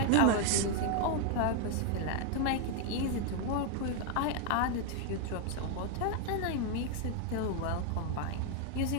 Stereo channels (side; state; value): both; different; correlation 0.01